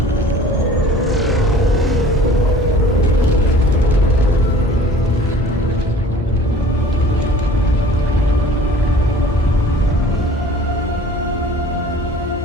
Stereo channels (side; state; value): both; normal; correlation 0.48